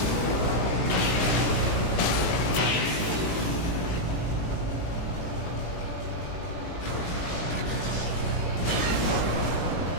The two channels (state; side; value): late; right; 18 ms